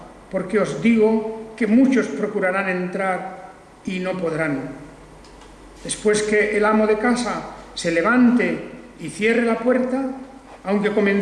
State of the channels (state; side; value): identical; both; correlation 1.00